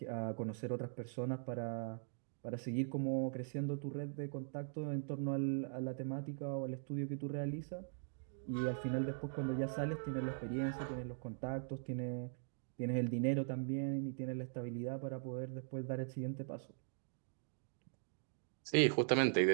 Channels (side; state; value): left; silent; digital silence